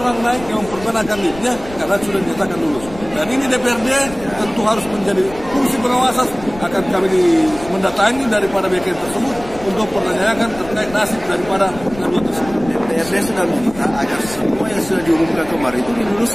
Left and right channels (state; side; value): noise; left; rumble, 16 dB below the sound